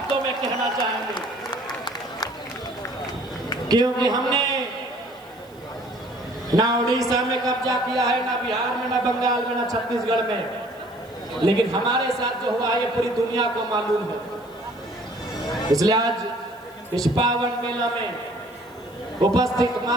में कहना चाहेंगे, क्योंकि हमने ना उड़ीसा में कब्जा किया है, ना बिहार में, ना बंगाल में, ना छत्तीसगढ़ में, लेकिन हमारे साथ जो हुआ है ये पूरी दुनिया को मालूम है। इसलिए आज इस पावन मेला में उपस्थित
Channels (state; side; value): noise; right; hiss, 29 dB below the sound